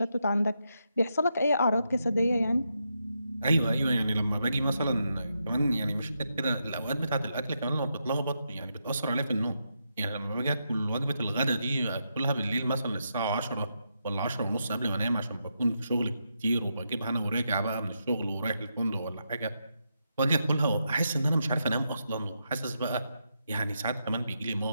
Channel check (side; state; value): both; inverted; correlation -0.83